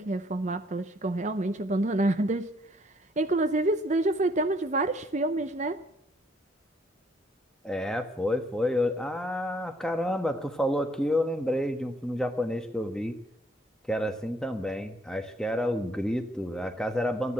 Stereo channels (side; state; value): both; normal; correlation 0.66